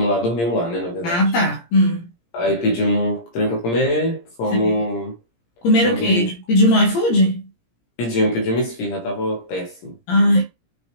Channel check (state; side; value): late; right; 17 ms